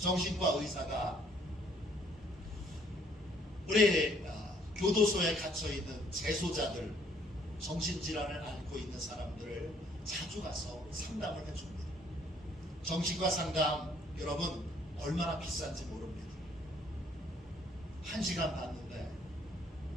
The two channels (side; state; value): both; normal; correlation 0.63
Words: 의사가 우리 교도소에 갇혀있는 재소자들, 정신질환을 앓고 있는 사람들을 자주 가서 상담을 해줍니다. 정신과 상담 여러분 얼마나 비싼지 모릅니다. 1시간 받는데